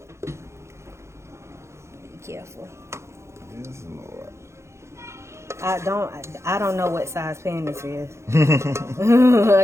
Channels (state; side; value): late; left; 0.13 ms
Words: Be careful. Yes, Lord. I don't know what size pan this is.